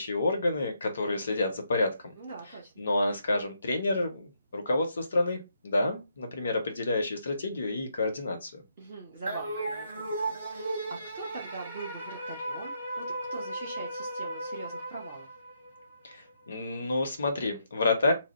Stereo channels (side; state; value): both; inverted; correlation -0.78